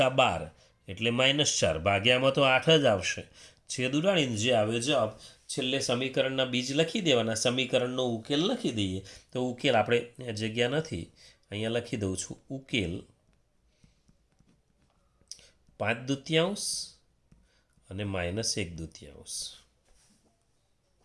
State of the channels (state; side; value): identical; both; correlation 1.00